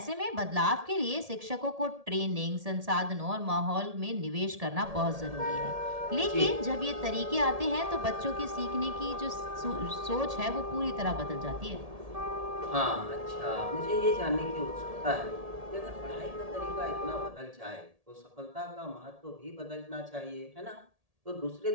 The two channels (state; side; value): late; left; 1.7 ms